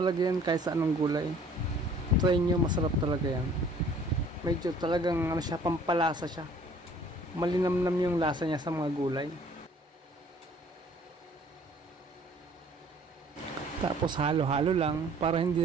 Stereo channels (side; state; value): both; normal; correlation 0.55